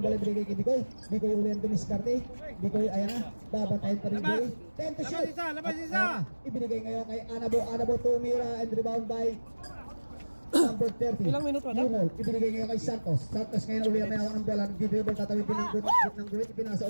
bola ibigay kay Bicoy. Bicoy uli ang dumiskarte. Bicoy ayan na, babantayin pa rin Bicoy. 10 to shoot. Labas isa! Ibinigay ngayon kay Anabo. Anabo tumira and rebound by number 30. Ilang minuto na? Yumo, ibinigay ngayon kay Santos. Santos ngayon uli ang may hawak ng bola. Nag-dribble, tatawid din ng guhit. Ipinasa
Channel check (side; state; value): both; inverted; correlation -1.00